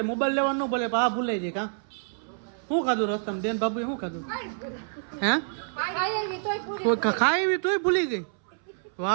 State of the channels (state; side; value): silent; left; 60 dB below the other